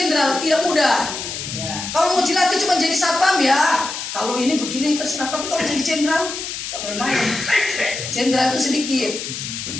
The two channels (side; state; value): left; noise; hiss, 6 dB below the sound